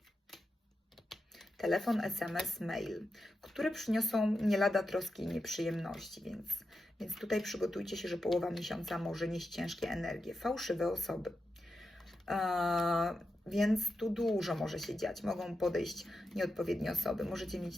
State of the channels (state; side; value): normal; both; correlation 0.89